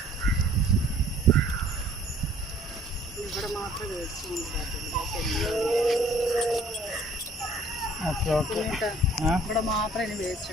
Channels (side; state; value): both; normal; correlation 0.56